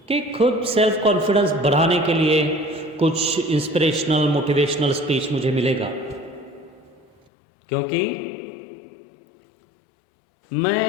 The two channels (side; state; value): right; drops out; at 7.2 s